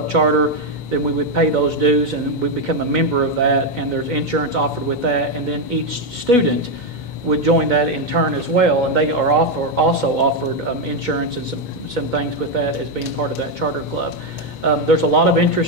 charter, then we would pay those dues and we become a member of that, and there's insurance offered with that, and then each student would join that in turn as well, and they are also offered insurance and some things with that as being part of that charter club. There's a lot of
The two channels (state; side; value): late; right; 2.1 ms